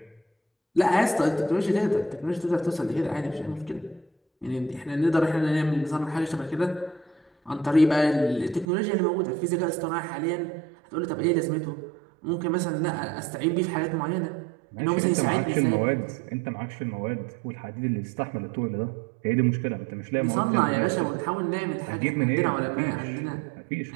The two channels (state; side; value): drops out; left; at 8.7 s